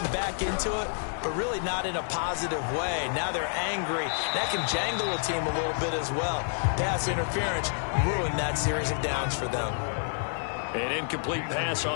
back into it, but really not in a positive way. Now they're angry. That can jangle a team a little bit as well. Pass interference ruined that series of downs for them. An incomplete pass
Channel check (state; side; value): silent; right; digital silence